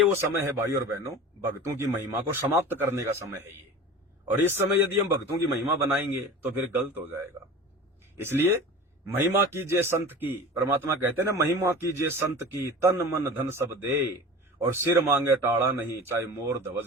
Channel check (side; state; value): both; normal; correlation 0.36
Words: वो समय है भाई और बहनों, भक्तों की महिमा को समाप्त करने का समय है ये। और इस समय यदि हम भक्तों की महिमा बनाएंगे तो फिर गलत हो जाएगा। इसलिए महिमा कीजिए संत की, परमात्मा कहते हैं ना, महिमा कीजिए संत की, तन मन धन सब दे, और सिर मांगे टाड़ा नहीं, चाहे मोर